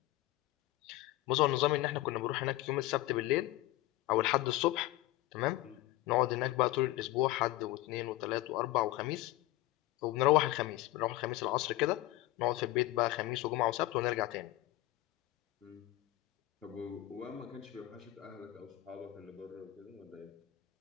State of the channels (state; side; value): quieter; right; 17.2 dB